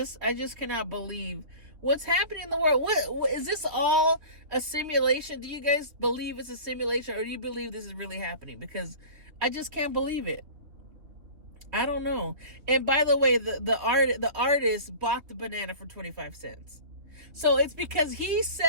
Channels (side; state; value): left; late; 3.3 ms